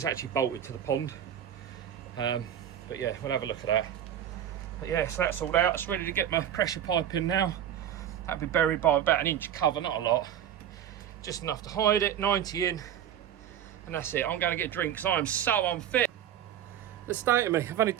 actually bolted to the pond. But yeah, we'll have a look at that. But yeah, so that's all out. It's ready to get my pressure pipe in now. That'll be buried by about 1 inch cover, not a lot. Just enough to hide it, 90 in. And that's it. I'm going to get a drink because I'm so unfit. The state of me, I've only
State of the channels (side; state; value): left; quieter; 10.1 dB